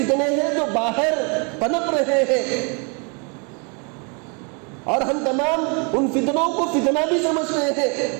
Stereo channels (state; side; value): quieter; left; 34.9 dB